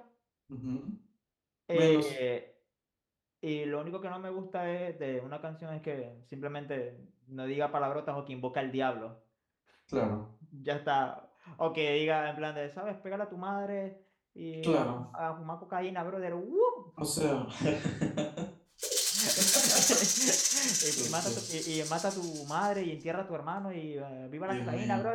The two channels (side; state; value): both; identical; correlation 1.00